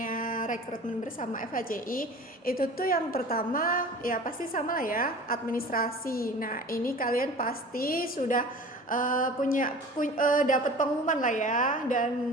Rekrutmen Bersama FHCI, itu tuh yang pertama ya pasti sama lah ya, administrasi. Nah, ini kalian pasti sudah dapat pengumuman lah ya, dan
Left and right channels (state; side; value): normal; both; correlation 0.41